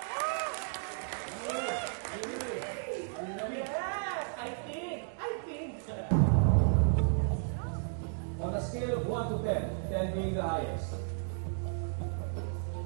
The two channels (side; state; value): left; silent; digital silence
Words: On a scale of 1 to 10, 10 being the highest,